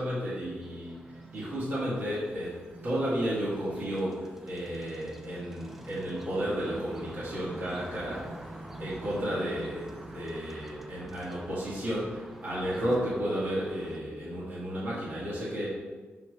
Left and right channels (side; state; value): both; normal; correlation 0.84